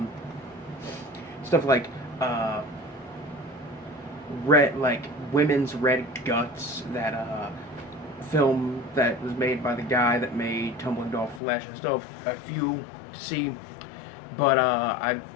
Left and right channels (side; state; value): right; drops out; at 11.4 s